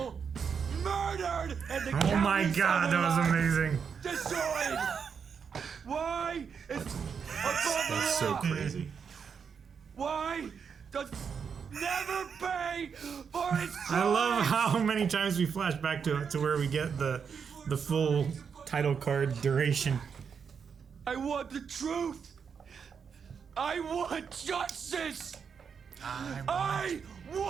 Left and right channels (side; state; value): left; quieter; 6.5 dB